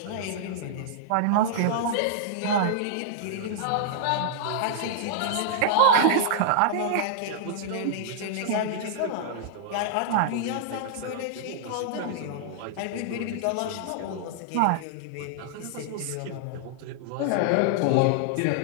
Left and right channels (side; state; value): both; different; correlation -0.01